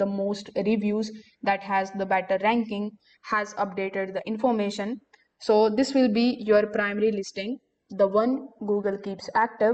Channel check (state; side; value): identical; both; correlation 1.00